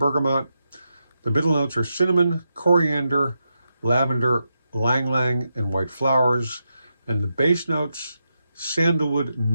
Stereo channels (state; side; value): inverted; both; correlation -0.86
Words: The middle notes are cinnamon, coriander, lavender, lang lang, and white flowers. And the base notes, sandalwood,